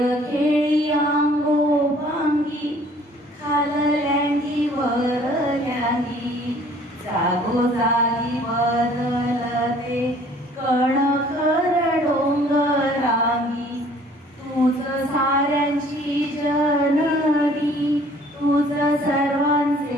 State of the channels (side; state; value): both; normal; correlation 0.55